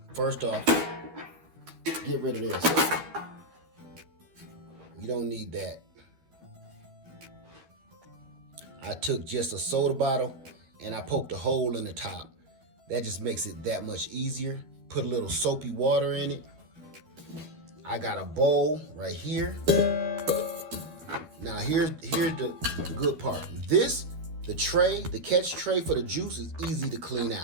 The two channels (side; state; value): left; late; 12 ms